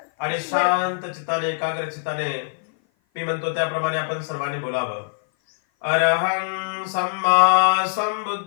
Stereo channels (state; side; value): silent; right; 56 dB below the other